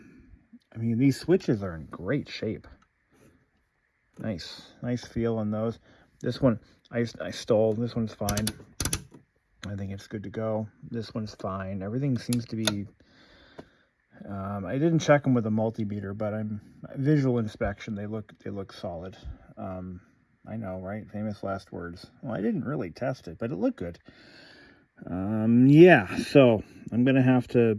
these switches are in great shape. Nice feel on those. This one, I stole. This one's fine. I think it's good to go. This one's fine. Everything seems to be... I didn't check them with a multimeter, but visual inspection, they look solid. I know, right? Famous last words. Well, I didn't really test it, but it looked good. Yeah, so I'm going to have to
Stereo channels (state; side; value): identical; both; correlation 1.00